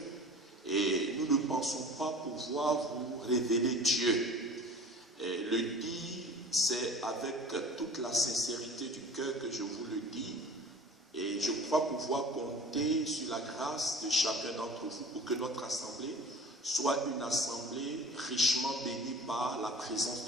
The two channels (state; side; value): normal; both; correlation 0.42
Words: et nous ne pensons pas pouvoir vous révéler Dieu. Et le dire, c'est avec toute la sincérité du cœur que je vous le dis. Et je crois pouvoir compter sur la grâce de chacun d'entre vous pour que notre assemblée soit une assemblée richement bénie par la présence